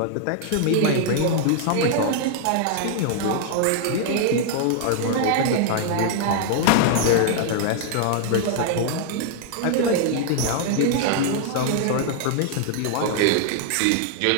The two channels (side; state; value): both; different; correlation -0.01